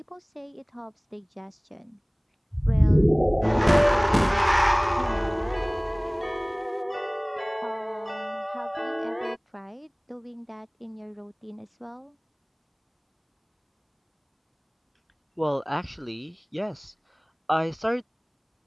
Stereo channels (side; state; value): both; identical; correlation 1.00